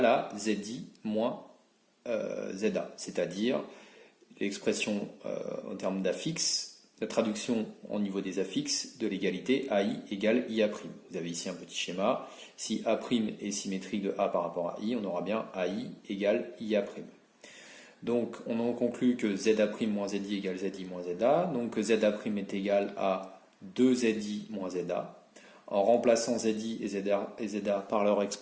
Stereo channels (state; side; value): identical; both; correlation 1.00